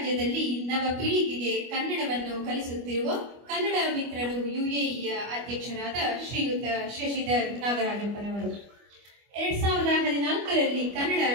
ನವ ಪೀಳಿಗೆಗೆ ಕನ್ನಡವನ್ನು ಕಲಿಸುತ್ತಿರುವ ಕನ್ನಡ ಮಿತ್ರರು ಯುಎಇಯ ಅಧ್ಯಕ್ಷರಾದ ಶ್ರೀಯುತ ಶಶಿಧರ್ ನಾಗರಾಜಪ್ಪನವರು 2014ರಲ್ಲಿ ಕನ್ನಡ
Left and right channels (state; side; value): late; left; 25 ms